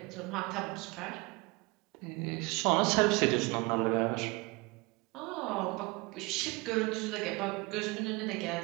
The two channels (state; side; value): quieter; left; 25.5 dB